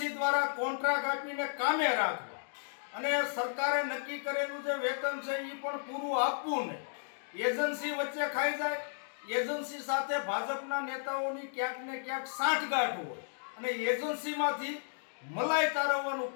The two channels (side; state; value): right; silent; digital silence